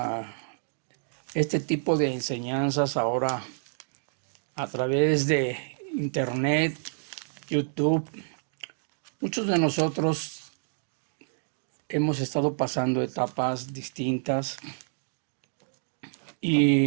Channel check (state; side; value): silent; left; digital silence